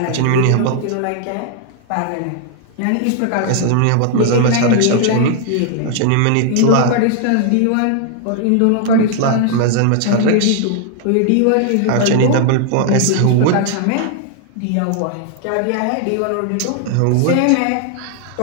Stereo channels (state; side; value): different; both; correlation 0.00